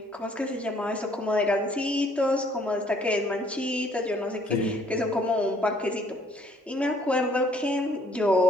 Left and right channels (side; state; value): both; normal; correlation 0.62